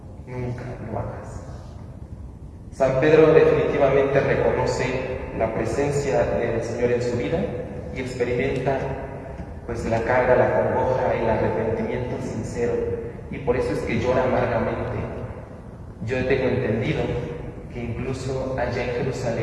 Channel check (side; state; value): both; identical; correlation 1.00